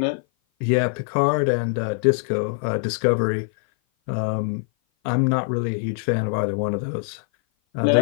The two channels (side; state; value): right; silent; 56 dB below the other